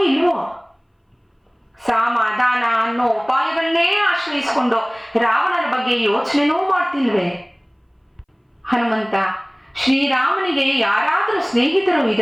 ಇಲ್ವೋ? ಸಮಾಧಾನ ಅನ್ನೋ ಉಪಾಯಗಳನ್ನೇ ಆಶ್ರಯಿಸಿಕೊಂಡು ರಾವಣನ ಬಗ್ಗೆ ಯೋಚನೆನೂ ಮಾಡ್ತಿಲ್ವೇ? ಹನುಮಂತ, ಶ್ರೀರಾಮನಿಗೆ ಯಾರಾದರೂ ಸ್ನೇಹಿತರು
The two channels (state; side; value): identical; both; correlation 1.00